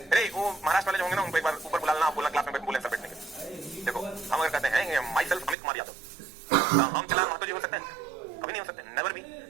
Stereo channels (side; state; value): left; drops out; at 5.6 s